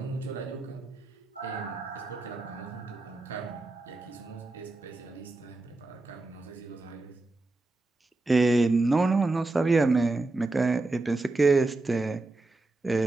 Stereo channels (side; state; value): left; quieter; 3.1 dB